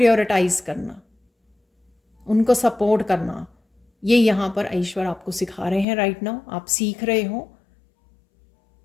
करना, उनको सपोर्ट करना, ये यहाँ पर ईश्वर आपको सिखा रहे हैं राइट नाउ। आप सीख रहे हो,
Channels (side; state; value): right; drops out; at 5.9 s